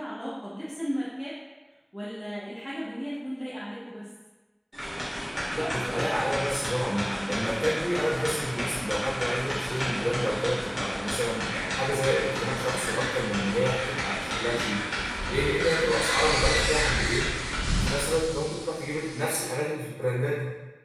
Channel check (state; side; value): identical; both; correlation 1.00